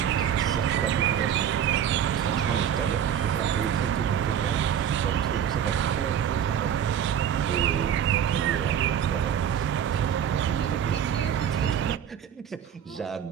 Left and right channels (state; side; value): quieter; left; 9.0 dB